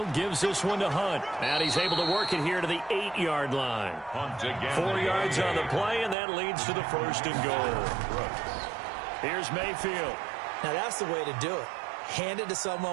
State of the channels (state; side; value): drops out; left; at 6.2 s